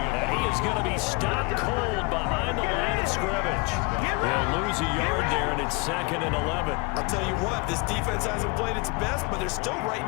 he is going to be stopped cold behind the line of scrimmage. They'll lose a yard there, and it's 2nd and 11. I'll tell you what, this defense hasn't played its best, but they're still right in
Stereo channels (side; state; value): right; quieter; 27.8 dB